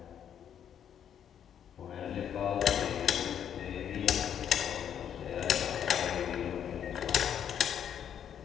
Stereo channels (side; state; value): right; quieter; 9.1 dB